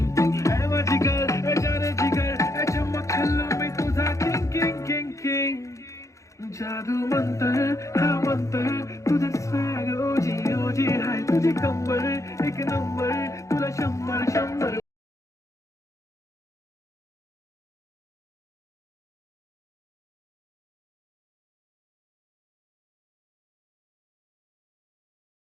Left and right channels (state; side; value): late; right; 0.15 ms